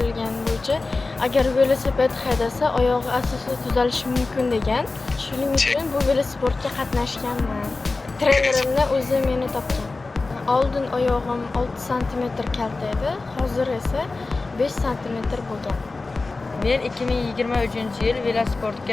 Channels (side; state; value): right; quieter; 3.6 dB